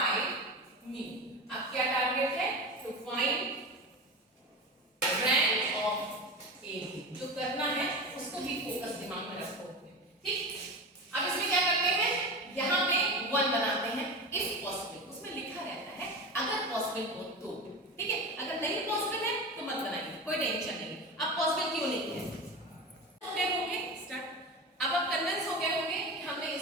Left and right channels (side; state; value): both; normal; correlation 0.26